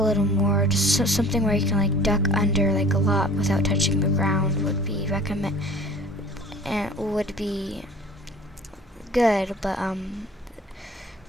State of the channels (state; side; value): normal; both; correlation 0.47